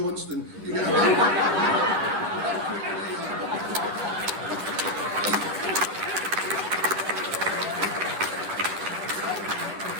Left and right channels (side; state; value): left; late; 10 ms